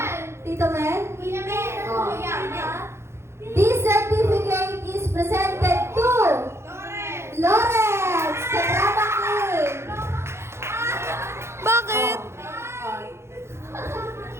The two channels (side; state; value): left; late; 0.13 ms